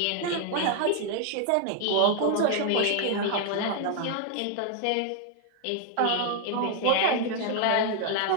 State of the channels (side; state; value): both; different; correlation 0.00